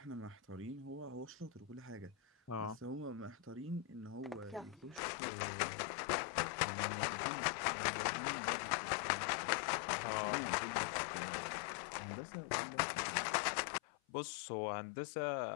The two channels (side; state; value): right; drops out; at 5.0 s